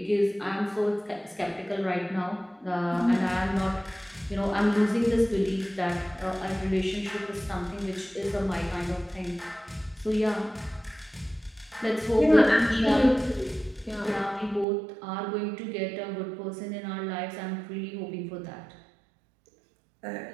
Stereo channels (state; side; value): drops out; left; at 14.7 s